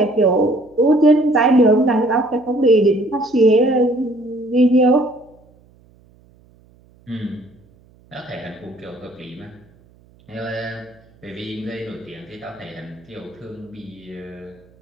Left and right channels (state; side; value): noise; right; hum, 30 dB below the sound